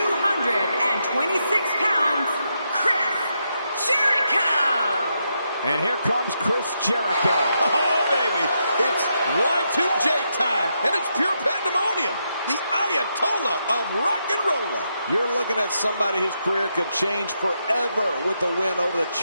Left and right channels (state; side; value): inverted; both; correlation -0.82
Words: pounds, Chris Jericho. And here comes Chris Jericho. Oh, baby, it's Y2J time, and it's pure pandemonium. The Ayatollah of rock and roller. You're looking at somebody whose career could change forever with the win over the